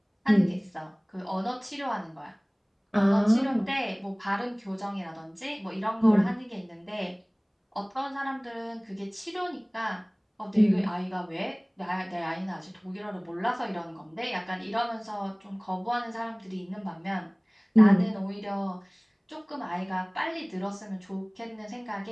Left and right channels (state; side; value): identical; both; correlation 1.00